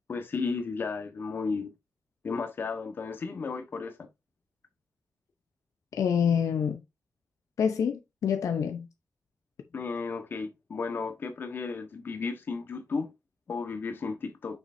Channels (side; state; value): right; quieter; 5.8 dB